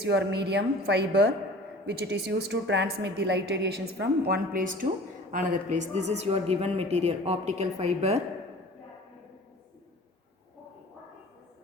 your medium fiber which it is used to transmit the light radiations from one place to another place. This is your given material, optical fiber.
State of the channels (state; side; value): normal; both; correlation 0.44